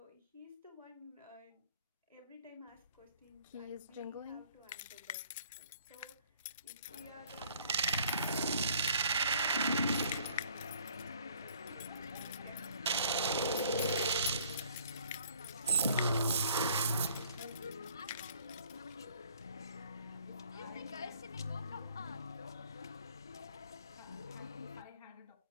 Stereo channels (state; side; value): inverted; both; correlation -0.58